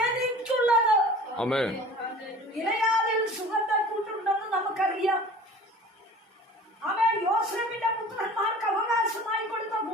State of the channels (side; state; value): both; normal; correlation 0.43